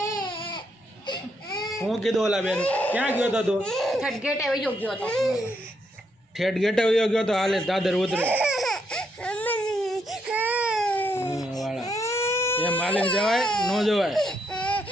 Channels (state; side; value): normal; both; correlation 0.76